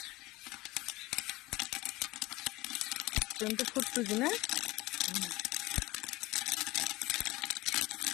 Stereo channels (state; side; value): quieter; right; 20.0 dB